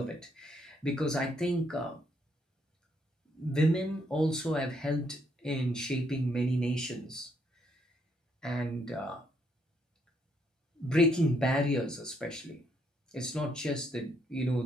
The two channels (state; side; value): normal; both; correlation 0.72